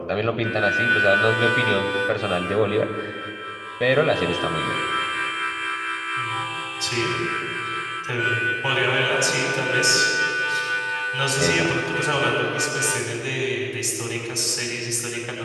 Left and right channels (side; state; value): both; identical; correlation 1.00